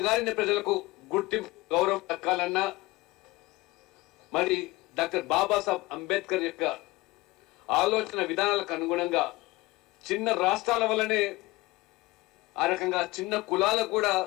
ప్రజలకు గుర్తింపు గౌరవం దక్కాలన్నా మరి డాక్టర్ బాబాసాహెబ్ అంబేద్కర్ యొక్క ఆలోచన విధానాలకు అనుగుణంగా చిన్న రాష్ట్రాల వల్లనే ఆ రకంగా చిన్న కులాలకు కూడా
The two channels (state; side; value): quieter; right; 21.0 dB